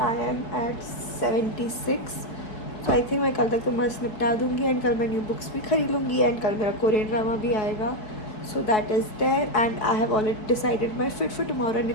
I am at 76. तो आई थिंक मैं कल तक तो मस्त निपटा दूँगी एंड कल मैं न्यू बुक्स भी खरीद लूँगी एंड कल मेरा कोरियन ड्रामा भी आएगा. So that is there and I have already decided my fit for tomorrow and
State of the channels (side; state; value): right; late; 4.7 ms